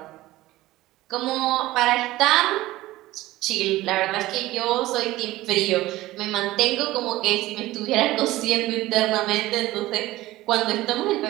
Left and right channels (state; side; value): quieter; left; 17.2 dB